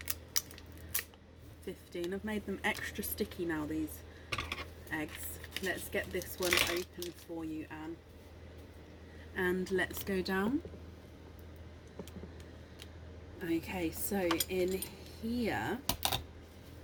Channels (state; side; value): identical; both; correlation 1.00